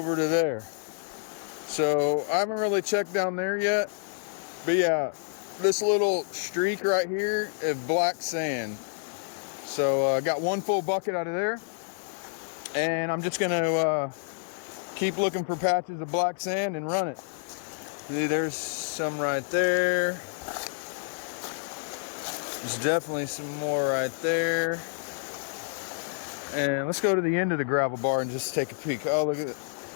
to there. So I haven't really checked down there yet, but yeah, this little streak right here is black sand. So I got one full bucket out of there, and I'm just gonna keep looking for patches of black sand and run it. See, there's some right there. There's definitely some more right there. And let's go to the end of the gravel bar and just take a peek. Oh, look at it.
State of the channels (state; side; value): silent; right; 59 dB below the other